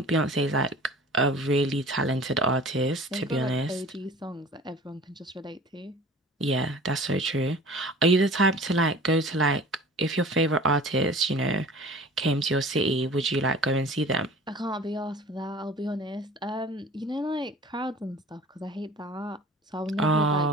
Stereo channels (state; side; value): normal; both; correlation 0.44